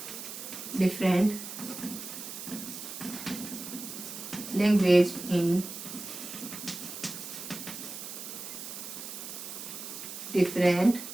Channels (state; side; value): noise; right; hiss, 9 dB below the sound